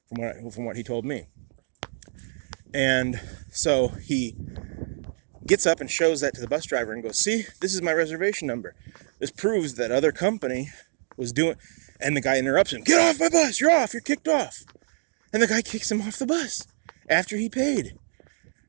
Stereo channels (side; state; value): left; silent; digital silence